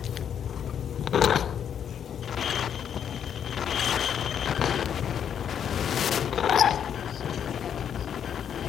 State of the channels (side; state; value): right; quieter; 8.6 dB